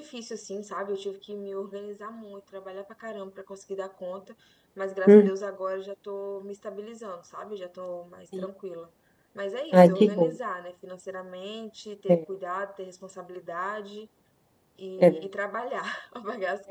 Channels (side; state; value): both; identical; correlation 1.00